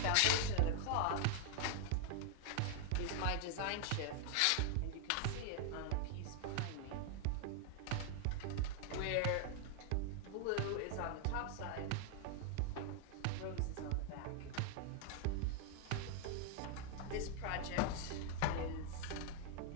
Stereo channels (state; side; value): different; both; correlation 0.00